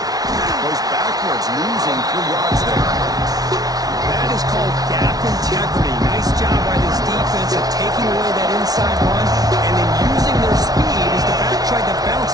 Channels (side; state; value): left; late; 0.18 ms